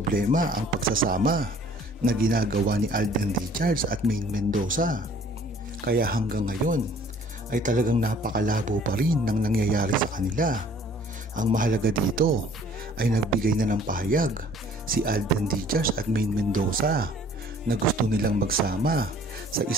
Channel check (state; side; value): normal; both; correlation 0.54